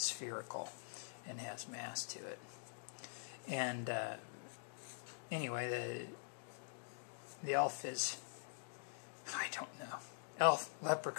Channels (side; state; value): right; silent; digital silence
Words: and has mass to it. And anyway, the elf is, I don't know, elf,